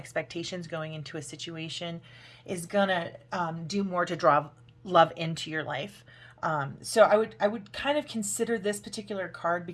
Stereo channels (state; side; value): identical; both; correlation 1.00